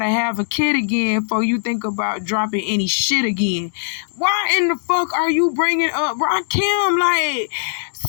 have a kid again before you think about dropping any shit again. Why in the fuck are you bringing up Rakim? Like,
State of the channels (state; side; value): silent; right; digital silence